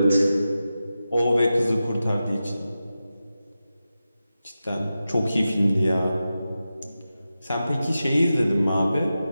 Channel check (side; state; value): both; inverted; correlation -0.92